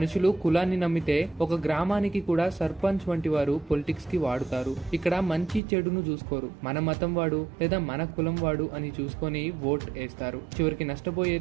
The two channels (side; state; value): left; drops out; at 5.6 s